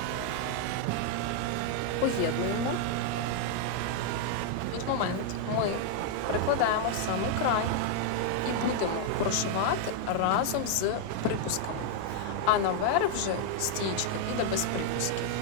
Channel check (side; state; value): both; different; correlation 0.00